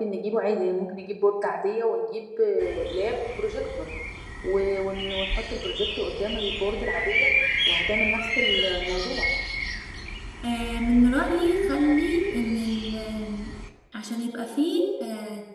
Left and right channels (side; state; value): both; identical; correlation 1.00